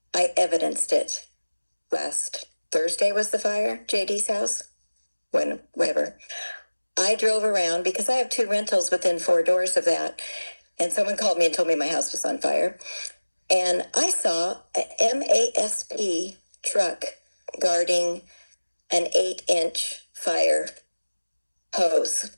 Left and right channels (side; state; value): both; inverted; correlation -1.00